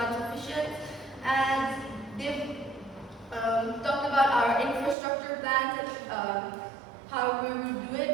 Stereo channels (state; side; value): drops out; left; at 5.0 s